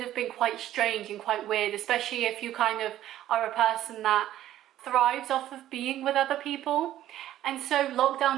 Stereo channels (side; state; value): left; quieter; 12.9 dB